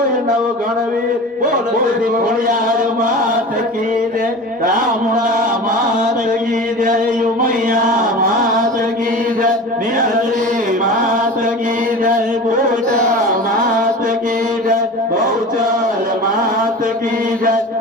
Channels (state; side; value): normal; both; correlation 0.34